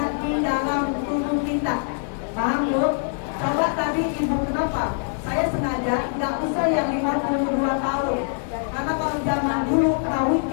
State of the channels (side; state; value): right; silent; digital silence